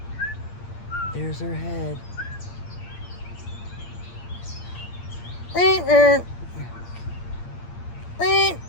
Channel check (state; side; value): late; right; 8.6 ms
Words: There's her head. I